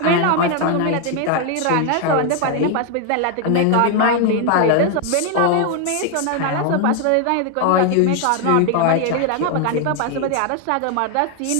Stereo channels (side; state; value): both; different; correlation 0.01